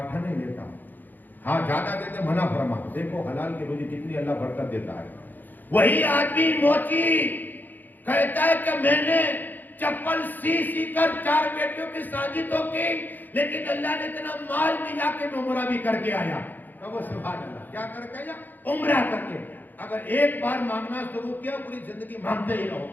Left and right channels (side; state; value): right; late; 0.087 ms